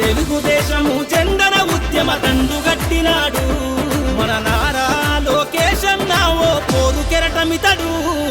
జెండన ఉద్యమ దండుగట్టినాడు మన నారా లోకేష్ అన్న ఓ పోరు కెరటమితడు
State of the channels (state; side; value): identical; both; correlation 1.00